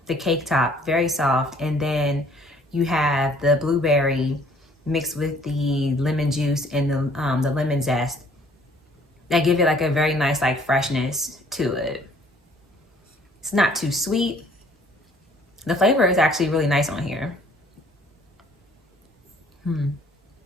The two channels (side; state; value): both; normal; correlation 0.58